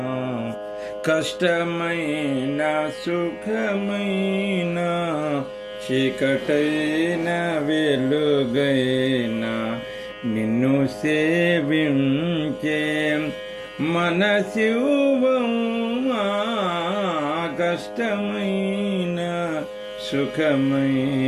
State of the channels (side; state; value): both; identical; correlation 1.00